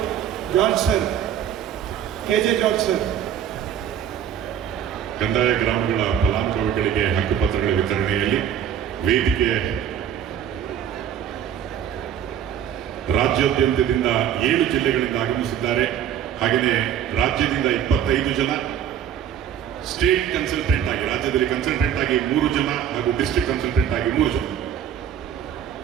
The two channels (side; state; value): left; quieter; 9.4 dB